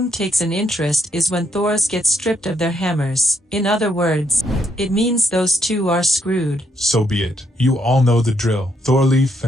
takes an interest is when Thors get stripped of their hammers. In other words, it means those two are screwed. So be it. You all know the drill. Thorleaf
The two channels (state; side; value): normal; both; correlation 0.75